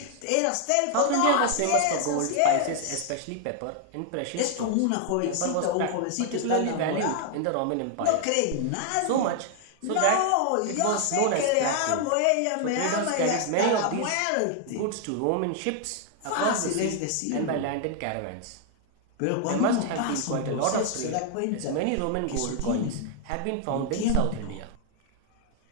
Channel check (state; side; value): different; both; correlation 0.00